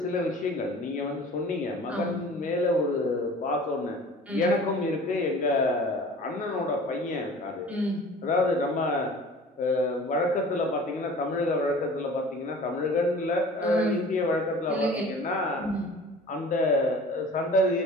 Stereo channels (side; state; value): both; normal; correlation 0.44